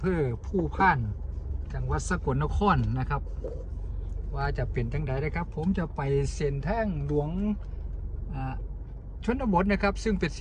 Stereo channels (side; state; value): both; identical; correlation 1.00